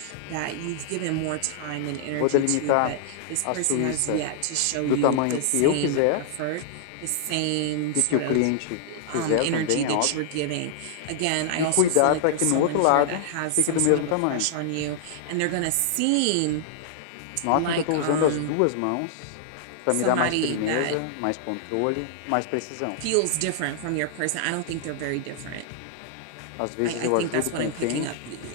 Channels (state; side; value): different; both; correlation -0.01